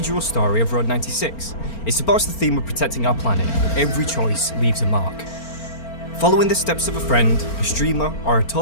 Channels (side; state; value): right; late; 4.4 ms